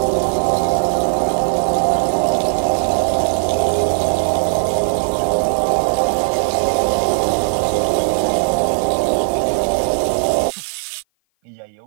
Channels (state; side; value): silent; left; 55 dB below the other